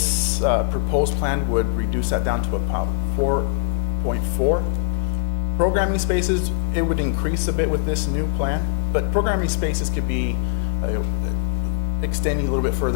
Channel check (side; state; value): right; silent; digital silence